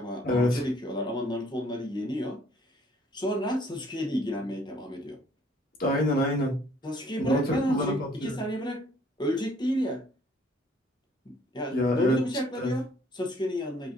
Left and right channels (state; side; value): normal; both; correlation 0.61